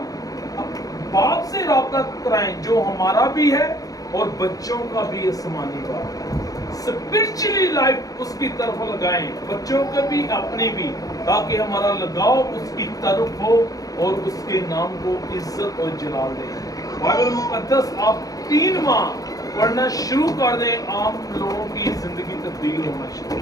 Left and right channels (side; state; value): right; late; 0.17 ms